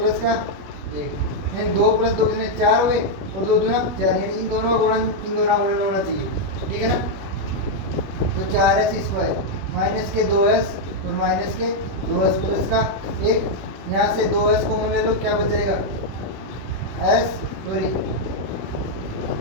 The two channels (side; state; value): left; late; 21 ms